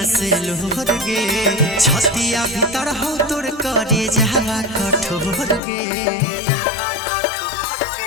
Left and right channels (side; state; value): right; drops out; at 5.6 s